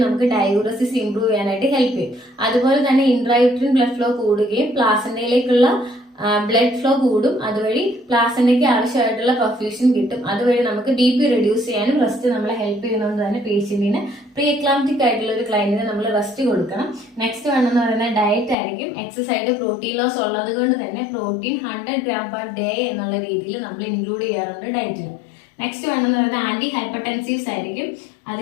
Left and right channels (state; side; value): drops out; right; at 18.6 s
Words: നമുക്ക് ഡയൂറസിസ് ഇംപ്രൂവ് ചെയ്യാനായിട്ട് ഹെൽപ്പ് ചെയ്യും. അതുപോലെ തന്നെ ഇൻട്രായൂട്രിൻ ബ്ലഡ് ഫ്ലോ കൂടുകയും പ്ലാസന്റയിലേക്കുള്ള ബ്ലഡ് ഫ്ലോ കൂടും. അതുവഴി പ്ലാസന്റയ്ക്ക് ആവശ്യമായിട്ടുള്ള പെർഫ്യൂഷൻ കിട്ടും. അതുവഴി നമുക്ക് BP റെഡ്യൂസ് ചെയ്യാനും റെസ്റ്റ് നമ്മളെ ഹെൽപ്പ് ചെയ്യുന്നതുകൊണ്ട് തന്നെ പേഷ്യന്റിന് പ്രീ എക്ലാംപ്റ്റിക് ആയിട്ടുള്ള ഒരു ക്ലയന്റിന് നമ്മൾ റെസ്റ്റ് കൊടുക്കണം. നെക്സ്റ്റ് വേണമെന്ന് പറയുന്നത് ഡയറ്റ് ആയിരിക്കും. എക്സസ് ആയിട്ട് പ്രോട്ടീൻ ലോസ് ഉള്ളത് കൊണ്ട് തന്നെ പ്രോട്ടീൻ 100 gram/day എന്നുള്ള രീതിയിൽ നമ്മൾ ഇൻക്ലൂഡ് ചെയ്യാറുണ്ട് ഡയറ്റിൽ. നെക്സ്റ്റ് വേണമെന്ന് പറയുന്നത് ആന്റി ഹൈപ്പർടെൻസീവ്സ് ആയിരിക്കും.